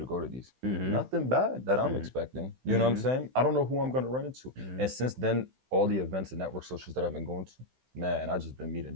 go to these? Nothing bad that I'm expecting. You know what I'm saying? I don't know who I'm gonna run into. And since then, all the events and network socials that I've been going to, man, I just been meeting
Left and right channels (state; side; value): late; left; 16 ms